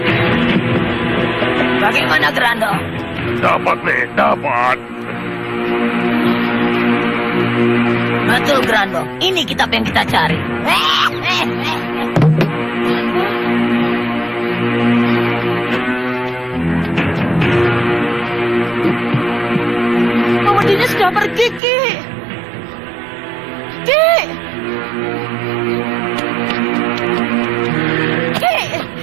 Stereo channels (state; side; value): drops out; left; at 21.6 s